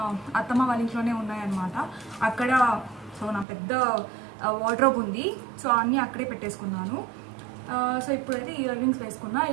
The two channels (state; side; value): drops out; left; at 3.5 s